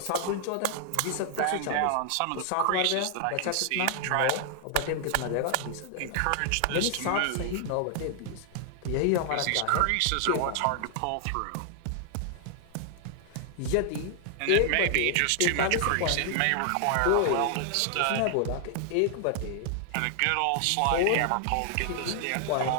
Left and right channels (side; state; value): both; different; correlation 0.00